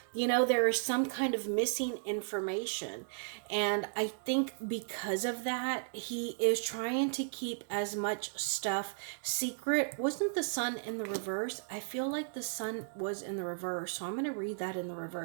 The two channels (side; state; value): left; silent; digital silence